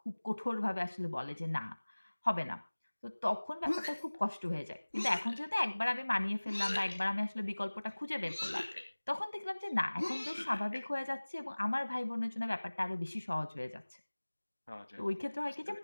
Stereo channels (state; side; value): inverted; both; correlation -1.00